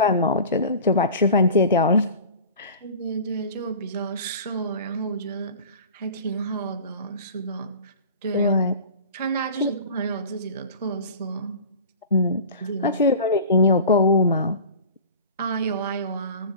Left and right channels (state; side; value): inverted; both; correlation -0.38